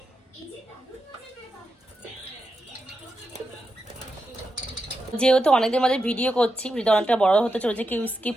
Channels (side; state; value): both; normal; correlation 0.87